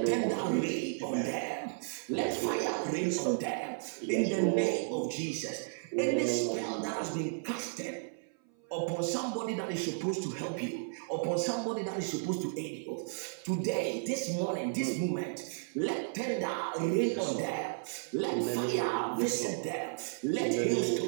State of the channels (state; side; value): silent; left; 55 dB below the other